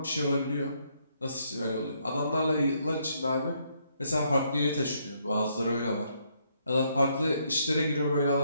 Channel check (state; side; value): inverted; both; correlation -0.73